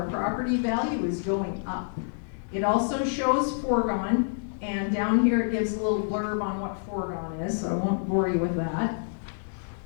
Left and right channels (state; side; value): silent; right; 57 dB below the other